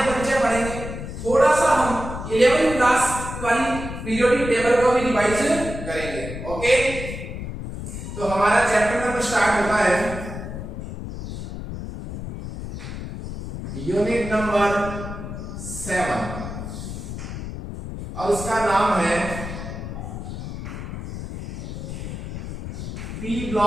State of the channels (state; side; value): noise; left; rumble, 8 dB below the sound